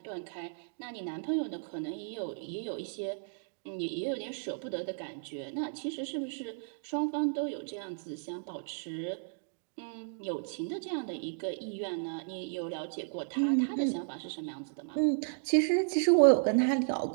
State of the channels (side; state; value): left; silent; digital silence